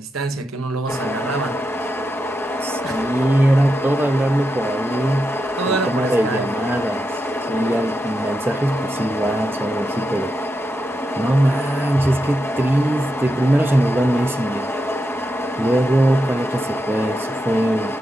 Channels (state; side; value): normal; both; correlation 0.86